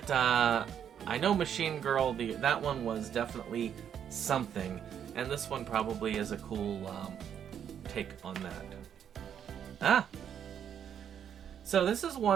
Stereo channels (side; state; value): left; quieter; 8.8 dB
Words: I know Machine Girl, that one was definitely something, and this one probably is a cool take on that. So this is